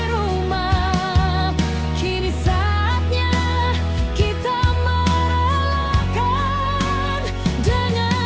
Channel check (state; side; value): identical; both; correlation 1.00